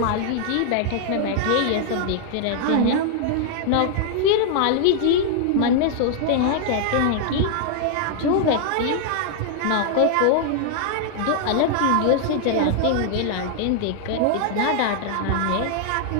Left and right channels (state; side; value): different; both; correlation 0.00